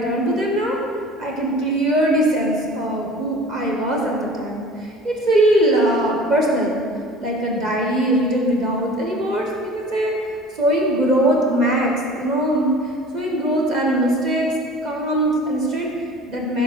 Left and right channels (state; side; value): normal; both; correlation 0.44